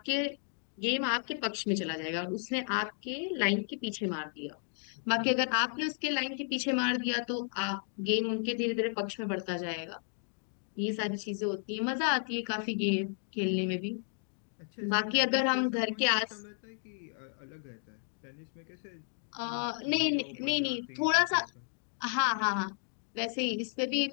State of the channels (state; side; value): silent; right; 56 dB below the other